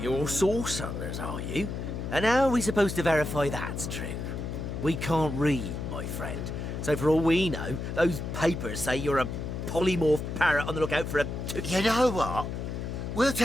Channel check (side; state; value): left; noise; hum, 5 dB below the sound